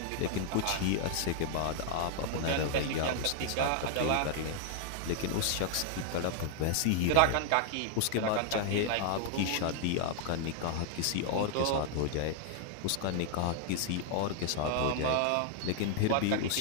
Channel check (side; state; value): both; different; correlation 0.00